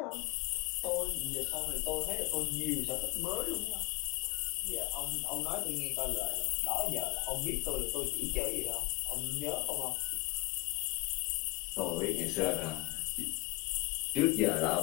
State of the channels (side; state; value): right; quieter; 23.4 dB